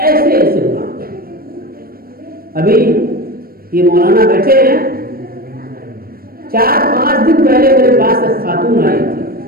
ایسے گناہ ابھی یہ مولانا بیٹھے ہیں، 4-5 دن پہلے میرے پاس ایک خاتون آئی تھی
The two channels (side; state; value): left; late; 0.43 ms